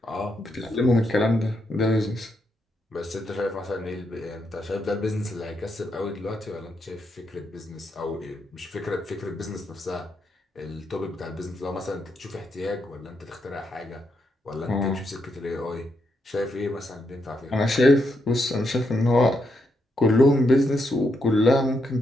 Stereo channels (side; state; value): both; normal; correlation 0.80